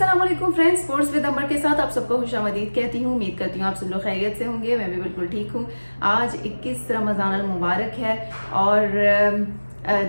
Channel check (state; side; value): inverted; both; correlation -1.00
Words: वालेकुम friends, sports with अमर के साथ आप सबको खुशामदीद कहती हूँ। उम्मीद करती हूँ आप सब लोग खैरियत से होंगे। मैं भी बिल्कुल ठीक हूँ। आज 21 रमज़ान अल मुबारक है और